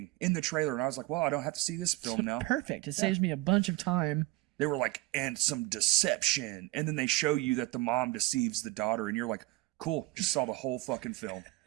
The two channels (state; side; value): quieter; left; 19.7 dB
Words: in the trailer, and I was like, well, I don't have to see this film now. Perfect. It saves me a bunch of time. They were like, and some deception, and then they show you that the mom deceives the daughter, and you're like, cool, just saw the whole fucking film.